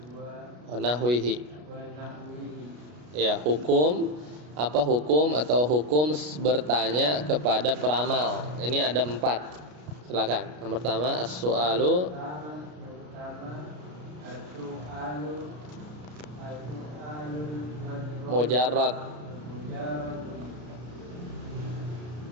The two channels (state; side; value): late; left; 33 ms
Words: wa nahwihi. Ya, hukum apa hukum atau hukum bertanya kepada peramal. Ini ada 4. Silakan. Yang pertama as-su'alu mujarrad